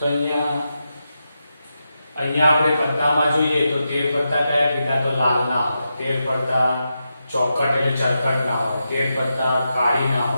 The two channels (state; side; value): inverted; both; correlation -0.87